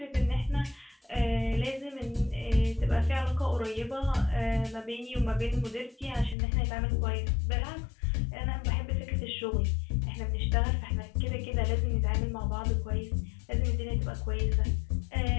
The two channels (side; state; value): right; drops out; at 6.4 s